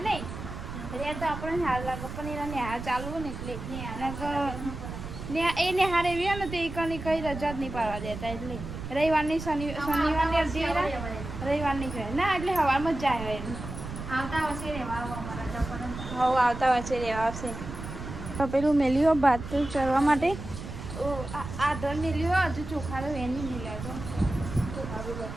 નહીં રે તો આપણે હાલ લાગે પણ એના નેહાર ચાલુ ને એટલે એ નેહાર એવી ને તો એ કઈ રજા જ નહીં પાડવા દેતા એટલે રવિવારની શનિવારની અડધી રવિવારની કહે ના એટલે હવામાં જ જાય એમ આવતા વર્ષે રહેવા આવતા વર્ષે રહેવા આવશે તો પેલું મેલ્યો ભાત ચરવા માટે આધર મેલ્યો હજુ ચોખા તો એની મેલ્યા તો ચોખા બી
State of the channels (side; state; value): right; noise; rumble, 9 dB below the sound